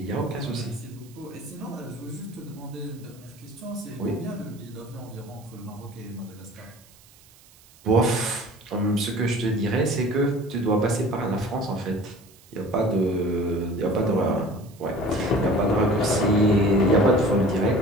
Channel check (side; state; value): right; noise; hiss, 26 dB below the sound